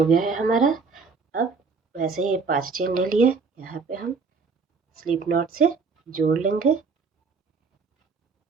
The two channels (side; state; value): left; quieter; 4.8 dB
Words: गया है हमारा। अब वैसे ही 5 चेन ले लिए, यहाँ पे हम स्लिप नॉट से जोड़ लेंगे